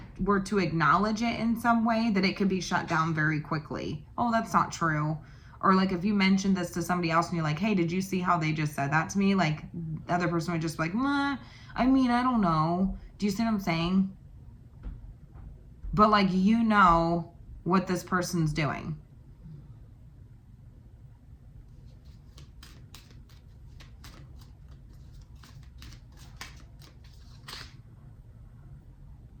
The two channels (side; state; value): both; identical; correlation 1.00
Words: were to acknowledge it in some way, that it could be shut down very quickly. Oh, that's not true. Or like if you mentioned this to somebody else and you're like, hey, did you see how they just said that to me? Like the other person would just be like, I mean, I don't know. Do you see what I'm saying? But like, you know what this person's doing.